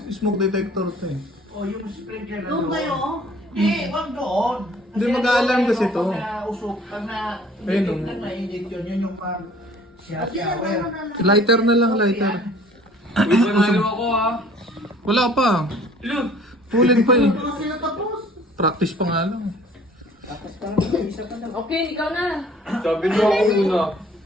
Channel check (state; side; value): normal; both; correlation 0.53